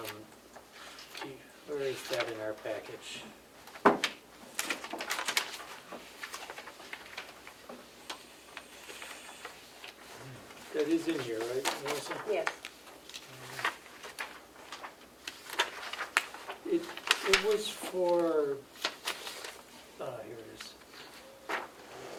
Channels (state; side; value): identical; both; correlation 1.00